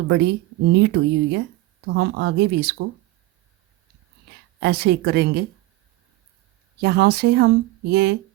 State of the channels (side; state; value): left; quieter; 18.1 dB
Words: बड़ी नीट हुई हुई है। तो हम आगे भी इसको ऐसे ही करेंगे। यहाँ से हम ये